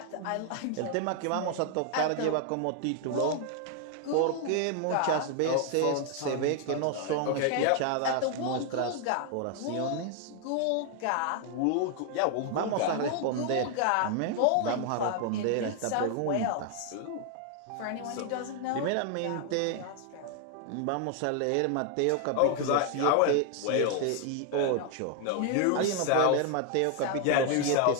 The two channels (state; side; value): different; both; correlation 0.00